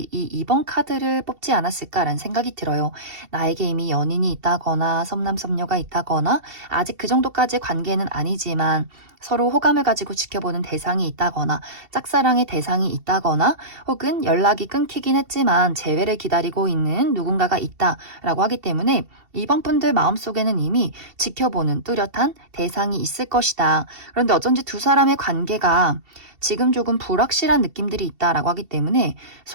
이 2번 카드를 뽑지 않았을까라는 생각이 들어요. 나에게 이미 연인이 있다거나 섭남섭녀가 있다거나 아직 그 정도까지의 관계는 아니지만 서로 호감을 가지고 지켜보는 대상이 있다거나 짝사랑의 대상이 있다거나 혹은 연락이 끊기긴 했지만 재회를 기다리고 있는 누군가가 있다라고 하기 때문에 2번 분들 마음속에는 이미 지켜보는 뚜렷한 대상이 있을 것이다. 그런데 어쩐지 두 사람의 관계가 지금 조금 불확실한 느낌들이 있다라고 하기 때문에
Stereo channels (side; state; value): left; late; 2.7 ms